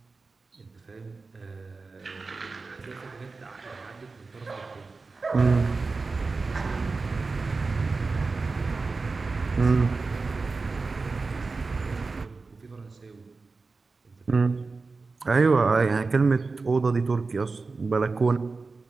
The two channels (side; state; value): left; quieter; 4.0 dB